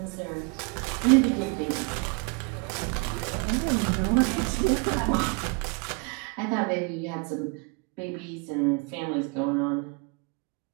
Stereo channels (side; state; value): left; quieter; 32.7 dB